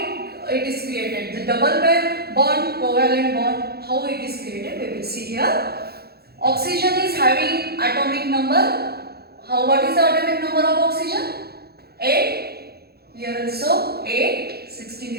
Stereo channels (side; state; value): left; late; 0.46 ms